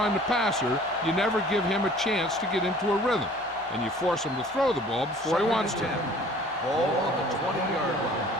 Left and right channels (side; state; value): both; normal; correlation 0.50